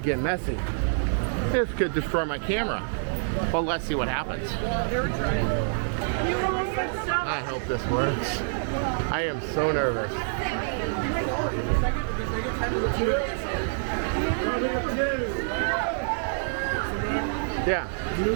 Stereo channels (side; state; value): left; silent; digital silence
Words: get messy. This could destroy my camera. But let's see what happens. I hope this works. I am so nervous. Yeah.